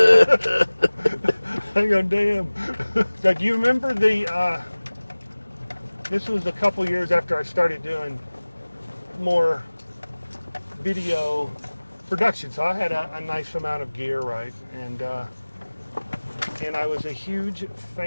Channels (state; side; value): inverted; both; correlation -1.00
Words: I go, "Damn." So do you remember this was a couple years after I started doing more video production. So I had a nice amount of gear, right? And I was a huge